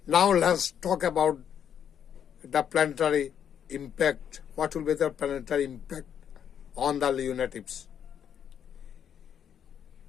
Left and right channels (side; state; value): right; quieter; 8.7 dB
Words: Now let's talk about the planetary impact. What will be the planetary impact on the Leo natives?